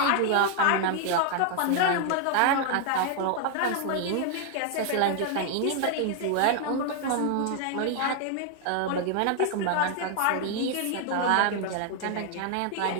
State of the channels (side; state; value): both; different; correlation 0.00